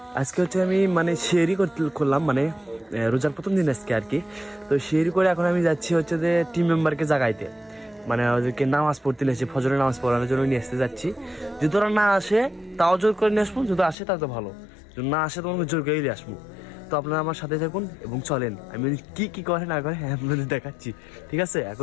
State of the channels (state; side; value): drops out; right; at 14.0 s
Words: আজকে হচ্ছে আমি মানে শেয়ারই করলাম, মানে রোজার প্রথম দিন আজকে আর কি। তো শেয়ারি করে এখন আমি যাচ্ছি হচ্ছে যে টিম মেম্বারকে জাগাইতে, মানে ওদেরকে নামাজ পড়তে নিয়ে আসে, ফজরের নামাজ পড়ানোর জন্য নিয়ে আসতে যাচ্ছি। যদি ওরা না আসে তাও জোর করে নিয়ে আসবো, যদি আসে তাও তো ভালো, যদি না আসে তোমাকে জোর করে নিয়ে আসবো। তো আপনারা আমার সাথে থাকুন এবং চলেন, আমি কি কি করে না করে আপনাদের দেখাচ্ছি, ঠিক আছে?